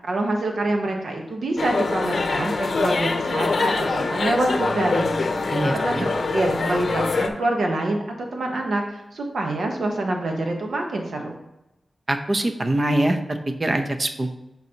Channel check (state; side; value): normal; both; correlation 0.90